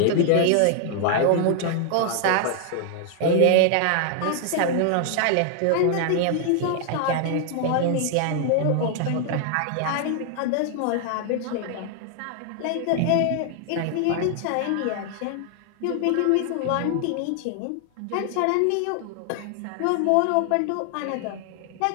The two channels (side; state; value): both; different; correlation 0.00